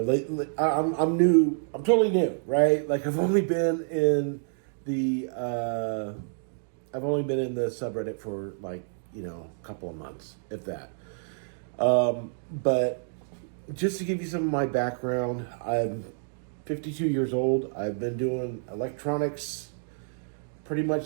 new. I'm totally new, right? Like I've only been in the subreddit for like a couple of months, if that. But just to give you some of my background, I'm 52 years old. I've been doing electronics pretty much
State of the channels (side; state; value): left; silent; digital silence